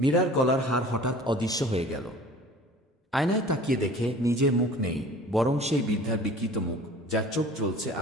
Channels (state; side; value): normal; both; correlation 0.45